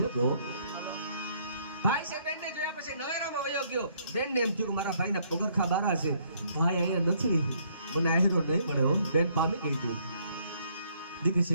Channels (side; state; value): both; inverted; correlation -0.67